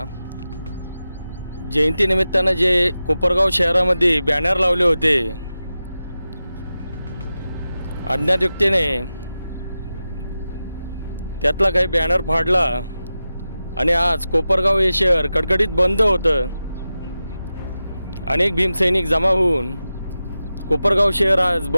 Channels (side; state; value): both; inverted; correlation -0.93